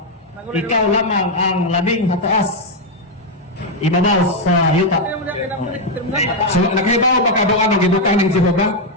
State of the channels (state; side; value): normal; both; correlation 0.01